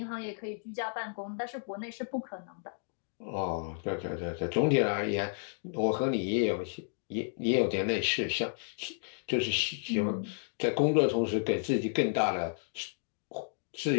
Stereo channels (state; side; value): silent; right; digital silence